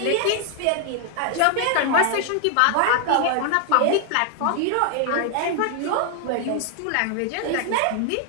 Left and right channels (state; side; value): different; both; correlation 0.00